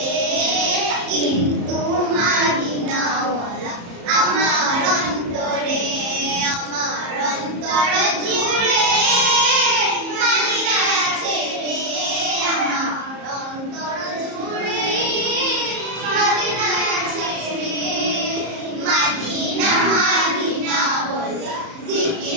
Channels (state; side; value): late; left; 34 ms